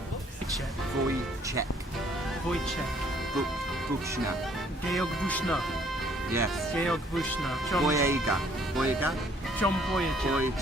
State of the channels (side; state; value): both; normal; correlation 0.62